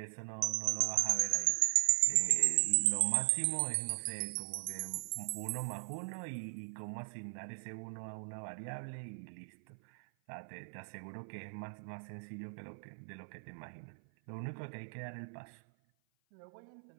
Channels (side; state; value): left; silent; 52 dB below the other